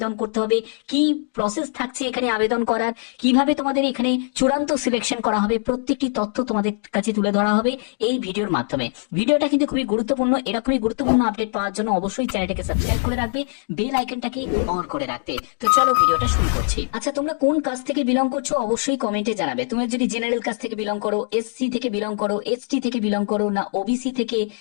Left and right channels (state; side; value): silent; right; 55 dB below the other